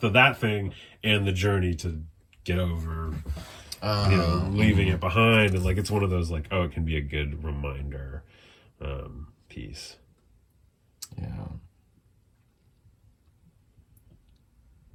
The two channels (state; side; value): identical; both; correlation 1.00